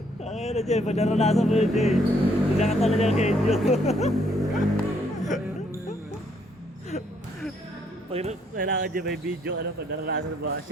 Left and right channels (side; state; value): both; normal; correlation 0.69